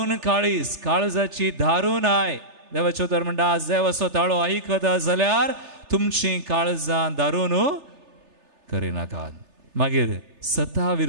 काळीज काळजाची दारूण आय देवाचो उतर म्हणटा आज देवाचो ताळो आयकता जाल्यार तुमची काळजां दारूण करिनाकात मागीर सता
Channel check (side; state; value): left; late; 3.3 ms